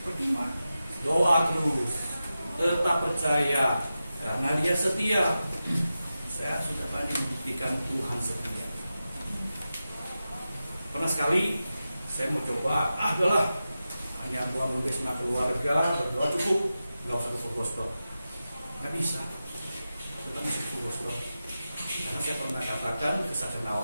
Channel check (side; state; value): both; inverted; correlation -0.92